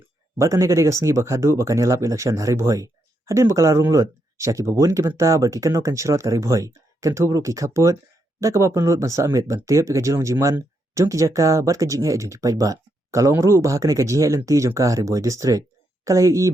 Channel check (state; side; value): normal; both; correlation 0.80